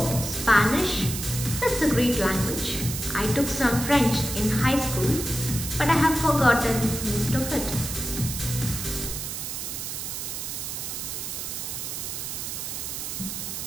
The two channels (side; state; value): right; noise; hiss, 5 dB below the sound